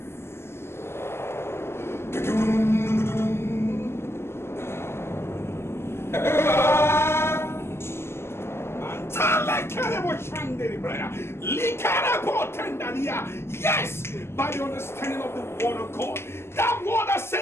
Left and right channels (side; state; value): right; late; 0.12 ms